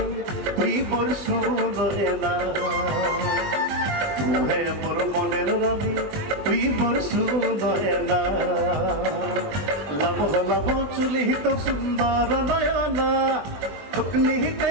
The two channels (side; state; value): left; late; 20 ms